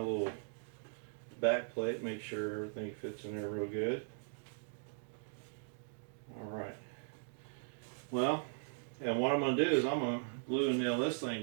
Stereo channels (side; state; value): left; silent; digital silence